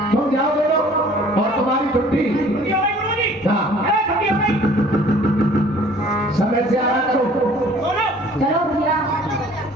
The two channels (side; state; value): both; normal; correlation 0.53